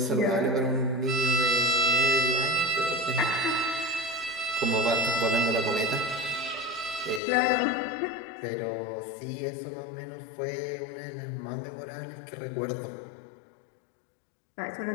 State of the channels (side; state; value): right; drops out; at 7.2 s